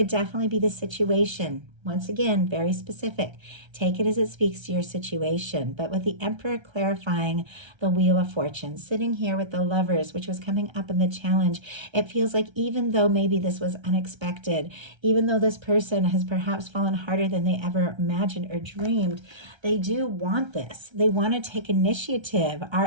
definitely be the situation. Once again, very specific. Take it as it speaks to your situation. But with the Emperor clarifying the Wheel of Fortune, sitting here with the Lovers, which was coming up in the challenge, it feels like even though maybe this was unexpected, even though this person has perhaps fallen harder than they ever imagined or dreamed, they do want this. They want to take initiative.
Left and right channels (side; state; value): left; late; 1.3 ms